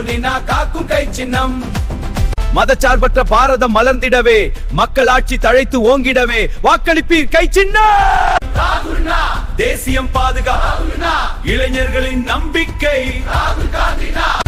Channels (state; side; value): identical; both; correlation 1.00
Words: காக்கும் கை சின்னம். மதச்சார்பற்ற பாரதம் மலர்ந்திடவே, மக்களாட்சி தழைத்து ஓங்கிடவே வாக்களிப்பீர் கை சின்னம். தேசியம் பாதுகாப்பு, இளைஞர்களின் நம்பிக்கை,